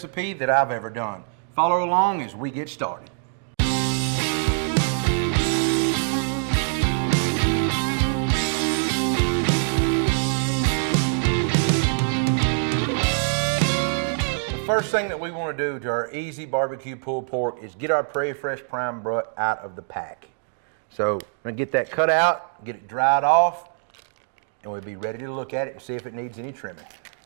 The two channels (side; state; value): left; silent; digital silence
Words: that I've ever done. Follow along as we get started. The first thing that we want to do to our easy barbecue pulled pork is get our Prairie Fresh prime butt out of the pack. So I'm going to get that cut out, get it dried off, and we'll be ready to look at it and see if it needs any trimming.